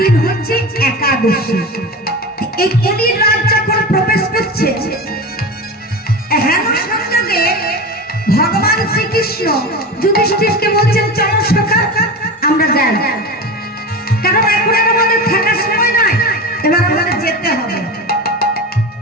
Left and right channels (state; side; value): normal; both; correlation 0.27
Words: হচ্ছে একাদশী। এই কলির রাত যখন প্রবেশ করছে, হেন সংযোগে ভগবান শ্রীকৃষ্ণ যুধিষ্ঠিরকে বলছেন, চলো সখা আমরা যাই, কারণ এখন আর আমাদের থাকার সময় নাই, এবার আমাদের যেতে হবে।